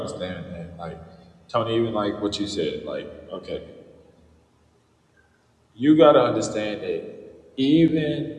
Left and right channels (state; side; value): identical; both; correlation 1.00